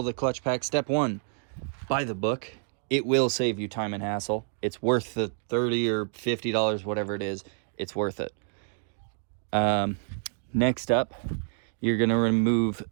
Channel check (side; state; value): left; silent; 59 dB below the other